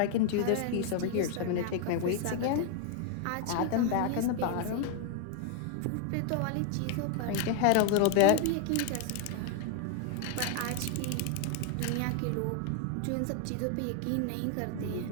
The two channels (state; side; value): different; both; correlation 0.00